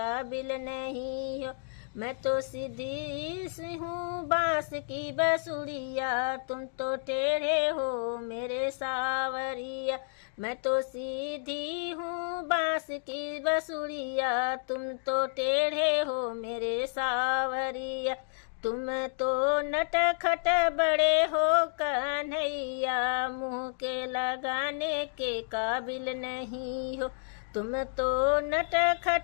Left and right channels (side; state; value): right; silent; digital silence